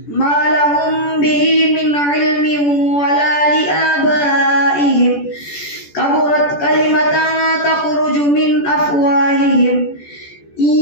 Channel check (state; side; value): late; right; 14 ms